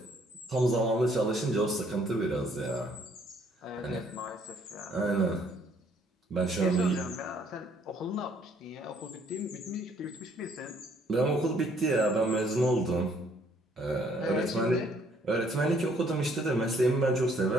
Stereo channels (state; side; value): normal; both; correlation 0.64